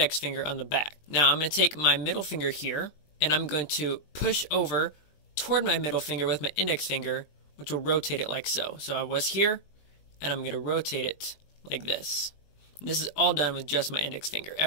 finger on the back. Now I'm going to take my middle finger here, and I'm going to push over toward my middle finger with my index finger, which will rotate it like so. So I was here, and I'm going to rotate it like this. And this is all done with just my index finger.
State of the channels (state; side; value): late; right; 20 ms